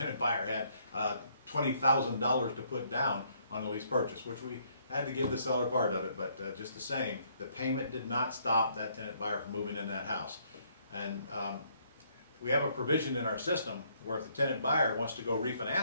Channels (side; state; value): both; inverted; correlation -0.68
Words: buyer had $20,000 to put down on the lease purchase, which we had to give the seller part of it, but just the same, the payment did not stop that tenant buyer from moving in that house. And we have a provision in our system where if the tenant buyer wants to go